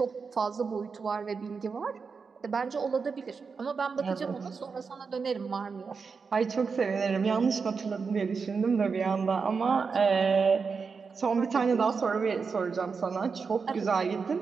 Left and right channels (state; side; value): quieter; left; 5.2 dB